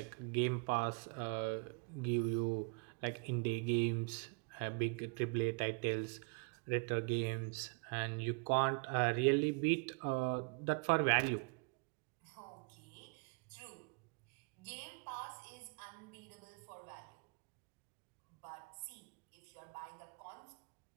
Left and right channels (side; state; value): left; quieter; 34.8 dB